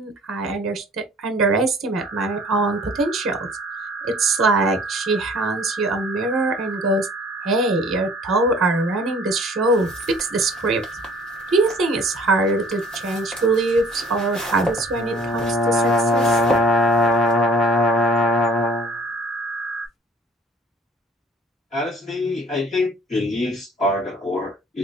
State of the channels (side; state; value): both; normal; correlation 0.52